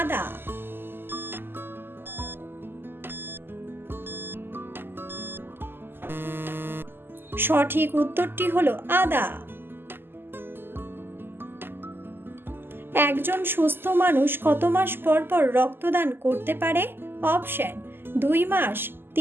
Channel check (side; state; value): left; late; 0.10 ms